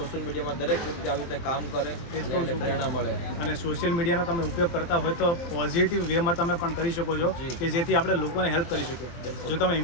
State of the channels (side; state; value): right; late; 23 ms